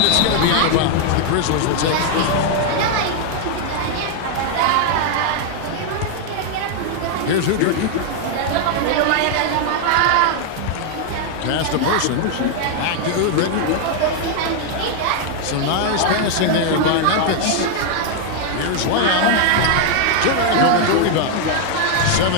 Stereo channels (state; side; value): different; both; correlation 0.00